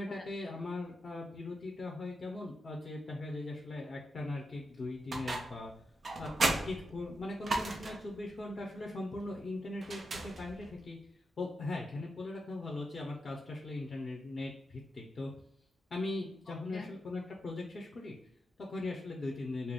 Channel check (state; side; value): normal; both; correlation 0.86